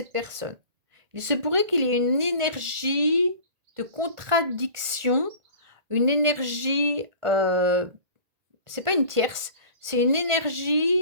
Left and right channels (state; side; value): late; left; 1.4 ms